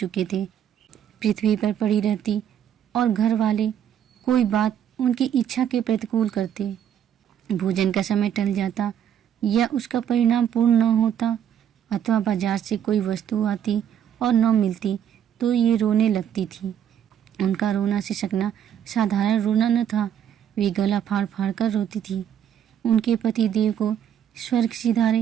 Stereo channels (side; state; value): left; quieter; 9.3 dB